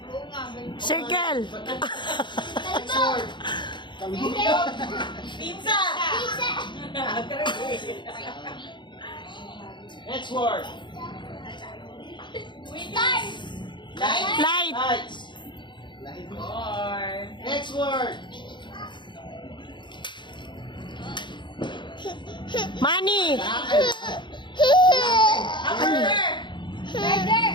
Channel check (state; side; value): late; right; 0.23 ms